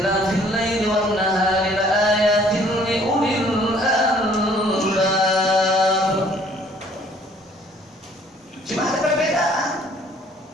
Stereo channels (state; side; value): normal; both; correlation 0.58